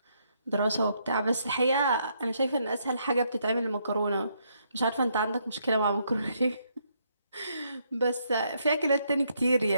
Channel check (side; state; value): both; inverted; correlation -0.74